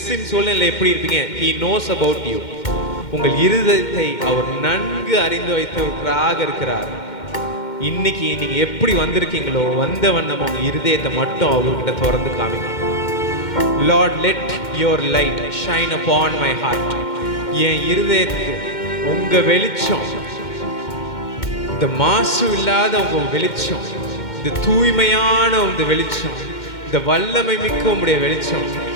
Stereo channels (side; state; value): right; late; 2.1 ms